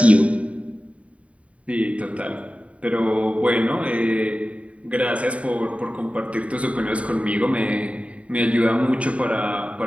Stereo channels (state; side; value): late; left; 0.065 ms